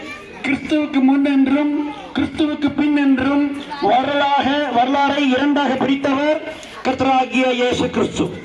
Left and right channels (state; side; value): identical; both; correlation 1.00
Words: கிறிஸ்துவுக்கு முன் என்றும் கிறிஸ்துவுக்கு பின் என்றும் வரலாறை இரண்டாக பிரித்தவர் கர்த்தராகிய இயேசு கிறிஸ்து.